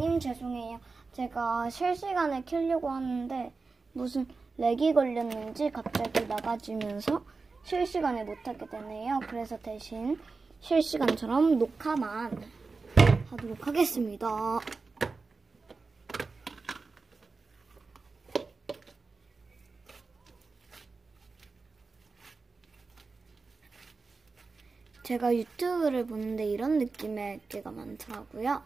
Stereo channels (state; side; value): quieter; left; 4.2 dB